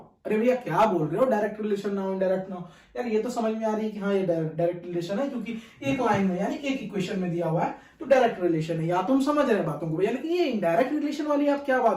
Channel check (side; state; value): both; identical; correlation 1.00